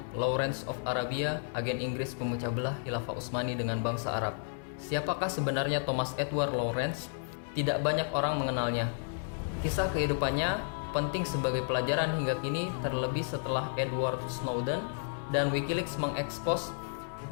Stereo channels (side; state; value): right; silent; digital silence